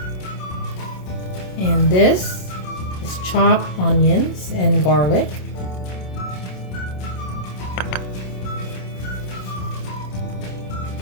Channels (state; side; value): late; right; 27 ms